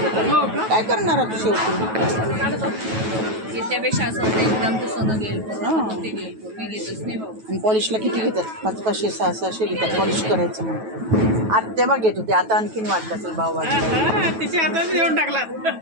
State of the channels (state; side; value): late; left; 9.2 ms